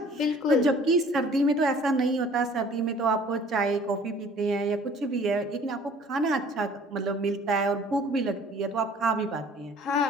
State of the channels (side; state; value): both; normal; correlation 0.52